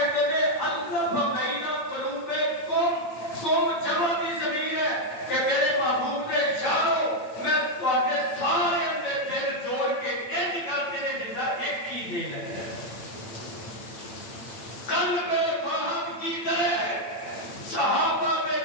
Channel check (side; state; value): right; late; 8.9 ms